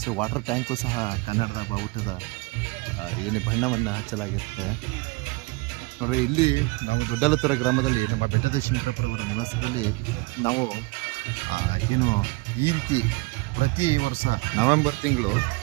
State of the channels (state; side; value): quieter; left; 25.5 dB